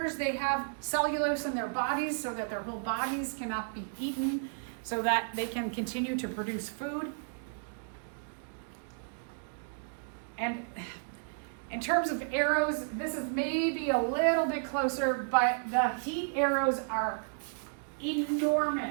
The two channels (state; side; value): silent; left; digital silence